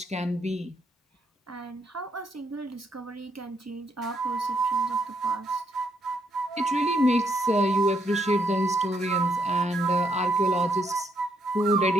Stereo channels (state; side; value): normal; both; correlation 0.74